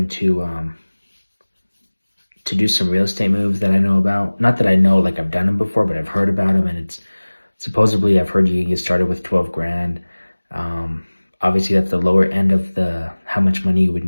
to do some real estate moves that I know about. Not that I know like I've done them before, but I've heard about them, and it's supposedly I've heard you can get started with 12 grand. Um, Obviously, that's the lower end of the how much money you would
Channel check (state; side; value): inverted; both; correlation -1.00